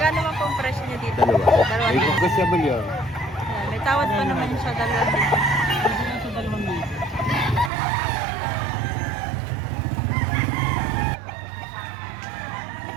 man po ang presyo niya dito? Dalawa. Dalawa May din. negotiable yun. Yan, may tawad pa naman yung sa dalawa dito.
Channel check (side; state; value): left; drops out; at 7.7 s